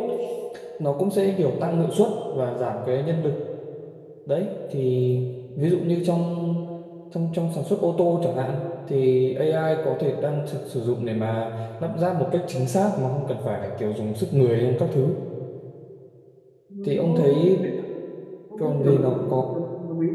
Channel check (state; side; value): identical; both; correlation 1.00